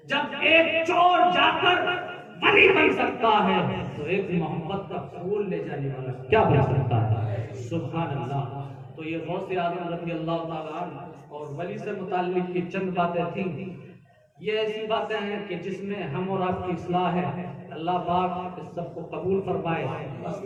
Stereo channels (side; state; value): both; identical; correlation 1.00